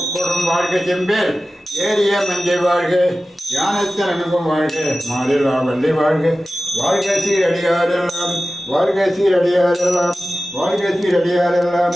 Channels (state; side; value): normal; both; correlation 0.95